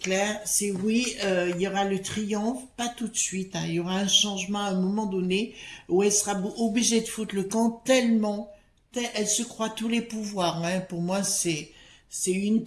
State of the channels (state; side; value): identical; both; correlation 1.00